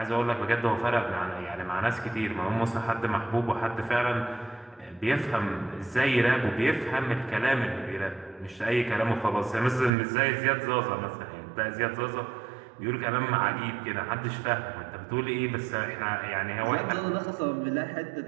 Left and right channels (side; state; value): left; drops out; at 9.9 s